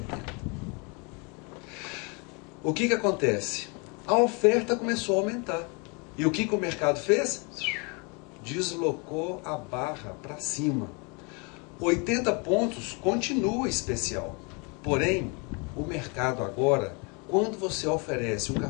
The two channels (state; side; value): quieter; right; 32.4 dB